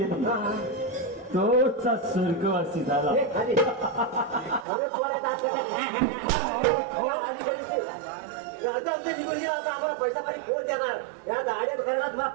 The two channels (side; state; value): left; drops out; at 4.7 s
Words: तोचा स्वर्गवासी झाला हे खाली. अरे, पोरात हात टाका. हो, आधी तरी ते. आता आमच्या जीवन गेला आता आम्हाला पैसा पाणी कोण देणार या गाड्यात करणार तुला